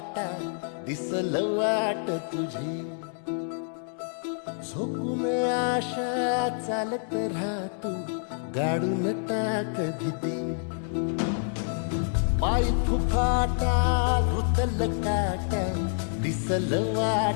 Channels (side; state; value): right; silent; digital silence